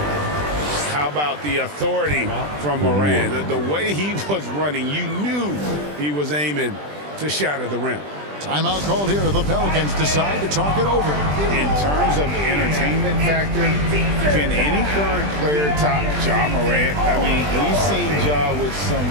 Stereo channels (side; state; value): left; late; 20 ms